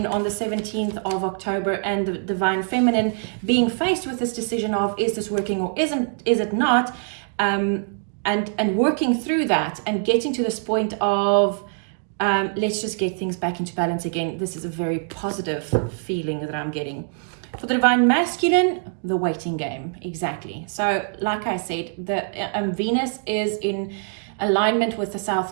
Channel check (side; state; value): left; silent; 61 dB below the other